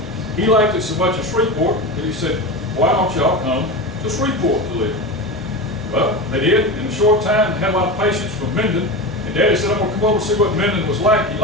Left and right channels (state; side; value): normal; both; correlation 0.24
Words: he liked it so much in Shreveport that he said, why don't y'all come to Shreveport to live? Well, they did. In a short time, they had a lot of patients from Minden. And Daddy said, I'm going to come over and see what Minden was like. He